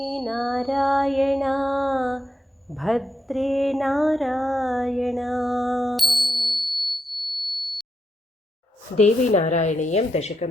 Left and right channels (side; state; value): both; normal; correlation 0.84